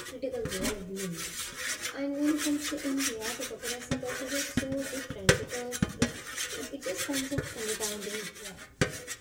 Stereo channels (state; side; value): identical; both; correlation 1.00